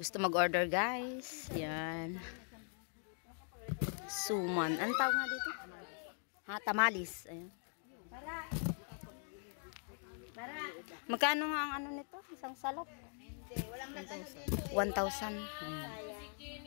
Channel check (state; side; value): silent; right; 50 dB below the other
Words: mag-order, guys. Yan. Suman. Anong tawag nga dito? Ha, tamalis. Ayan. Magkano nga ang ano nito? Isang salop? 1,000.